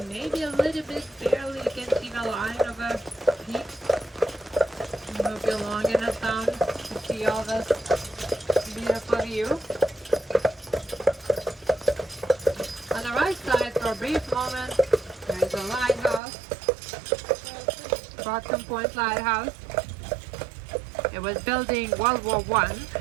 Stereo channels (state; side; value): drops out; left; at 16.2 s